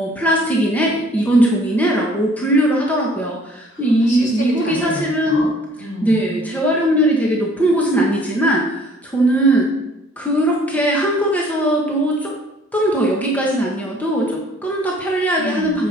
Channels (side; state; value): both; normal; correlation 0.56